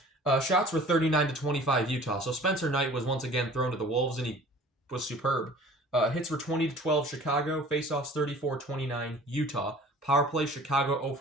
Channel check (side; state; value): both; normal; correlation 0.47